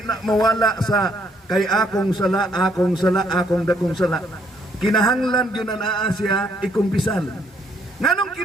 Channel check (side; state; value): both; normal; correlation 0.68